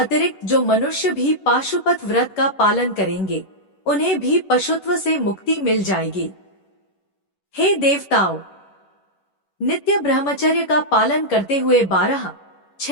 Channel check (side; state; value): right; late; 11 ms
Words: जो मनुष्य भी पाशुपत व्रत का पालन करेंगे, उन्हें भी पशुत्व से मुक्ति मिल जाएगी। हे देवताओं, नित्य ब्रह्मचर्य का पालन करते हुए 12,